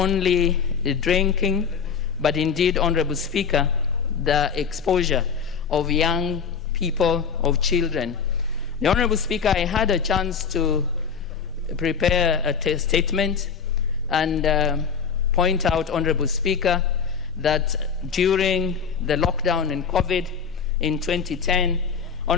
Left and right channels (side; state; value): right; quieter; 6.4 dB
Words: the drinking, but indeed, Honorable Speaker, the exposure of young people, of children. The Honorable Speaker, I had a chance to prepare a statement and point out, Honorable Speaker, that during the lockdown in COVID in 2010,